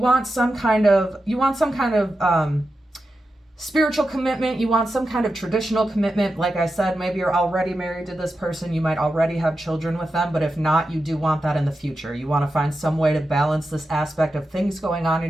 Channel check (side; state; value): both; normal; correlation 0.90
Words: some kind of spiritual commitment. You want some kind of traditional commitment. Like I said, maybe you're already married to this person. You might already have children with them, but if not, you do want that in the future. You want to find some way to balance this aspect of things going on